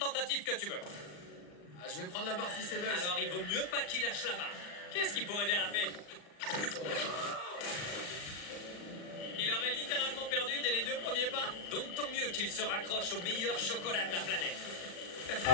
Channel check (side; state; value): right; late; 40 ms